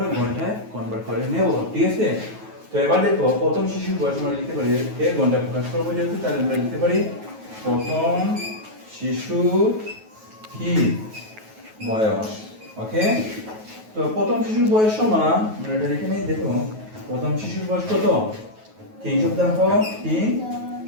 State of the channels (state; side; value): late; left; 9.3 ms